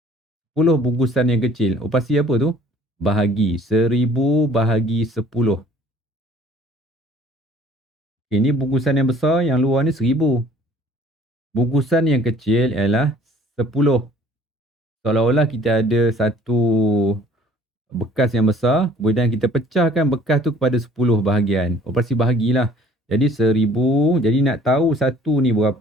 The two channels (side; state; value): both; normal; correlation 0.54